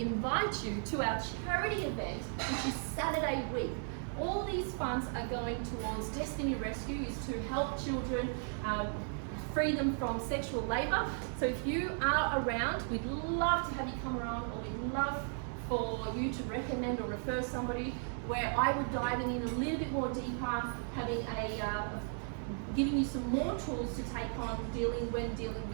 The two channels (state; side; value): silent; left; 54 dB below the other